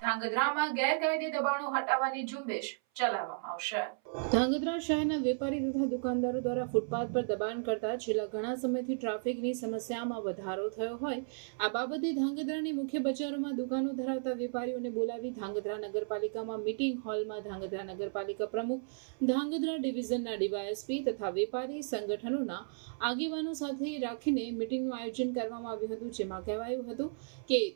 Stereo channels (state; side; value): silent; left; 55 dB below the other